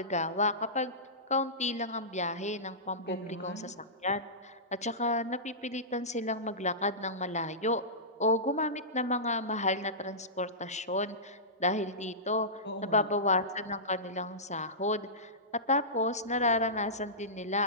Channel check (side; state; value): both; normal; correlation -0.19